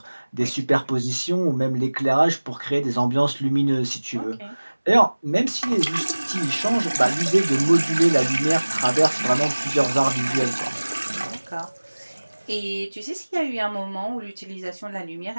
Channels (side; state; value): both; inverted; correlation -1.00